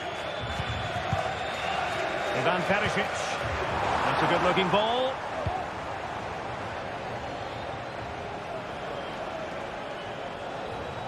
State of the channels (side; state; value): both; identical; correlation 1.00